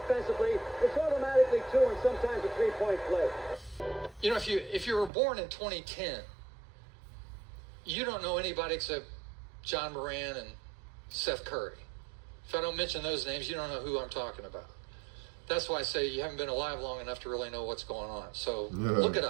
it's automatically 2 and sometimes a 3-point play. You know, if you were born in 2010, you don't know anybody except John Moran and Seth Curry. If I don't mention those names, you don't know who I'm talking about. That's why I say you haven't been alive long enough to really know what's going on. So look it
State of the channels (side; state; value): left; drops out; at 5.1 s